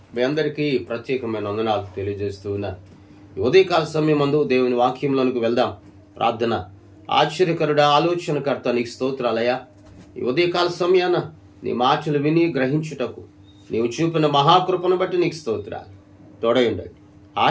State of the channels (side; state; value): both; identical; correlation 1.00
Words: మీ అందరికీ ప్రత్యేకమైన వందనాలు తెలియజేస్తూ ఉన్నాను. ఉదయకాల సమయం ముందు దేవుని వాక్యంలోనికి వెళ్దాం. ప్రార్థన. ఆశ్చర్యకరుడా, ఆలోచనకర్త, నీకు స్తోత్రాలయ్యా. ఈ ఉదయకాల సమయాన నీ మాటలు విని గ్రహించుటకు నీవు చూపిన మహాకృపను బట్టి నీకు స్తోత్రాలు. తోడయుండండి,